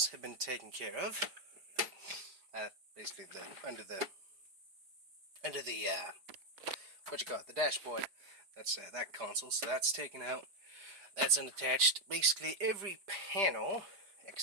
have been taken care of. Basically under the what you call it, the dashboard. That's that console, so that's taken out. That's unattached. Basically every panel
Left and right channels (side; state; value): left; late; 5.0 ms